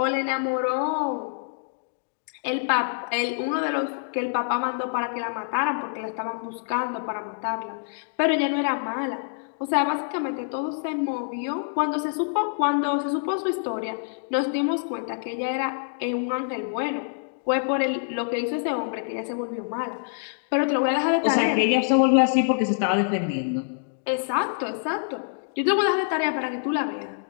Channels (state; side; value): silent; right; digital silence